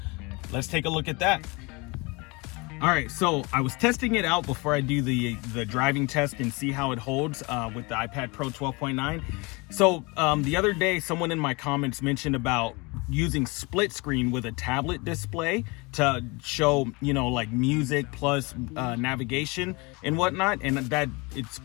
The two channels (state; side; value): quieter; right; 27.0 dB